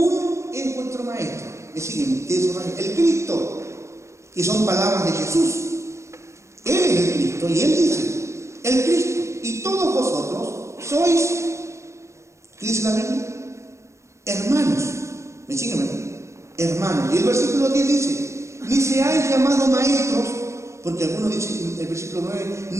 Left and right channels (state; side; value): late; left; 0.14 ms